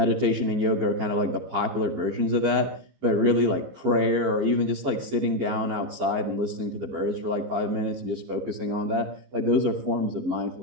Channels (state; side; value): late; left; 15 ms